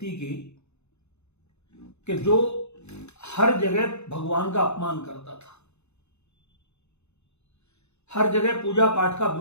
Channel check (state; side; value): late; right; 0.81 ms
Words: की कि जो हर जगह भगवान का अपमान करता था, हर जगह पूजा पाठ का